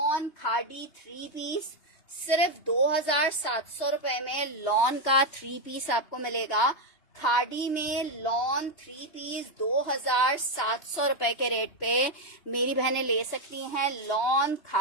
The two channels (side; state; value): right; late; 3.2 ms